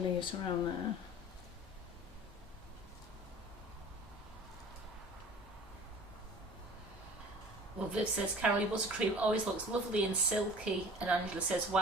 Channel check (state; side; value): normal; both; correlation 0.45